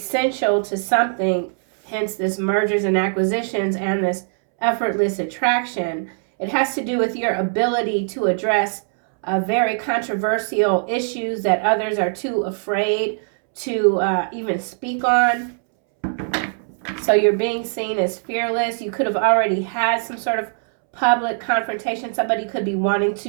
to something, hence this mergers and acquisitions and this effortless attraction. It has to do with your ability to address very controversial issues that others are too afraid to even speak on. So you're being seen as fearless. You could have already had some sort of public confrontation. Somebody could be wanting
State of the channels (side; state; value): left; silent; 65 dB below the other